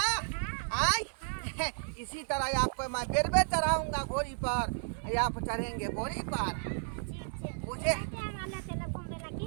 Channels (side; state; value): left; silent; digital silence